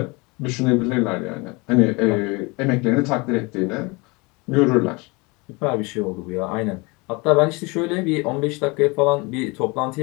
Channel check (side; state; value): right; quieter; 26.9 dB